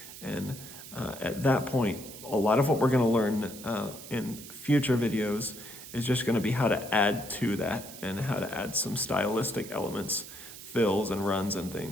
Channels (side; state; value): right; noise; hiss, 14 dB below the sound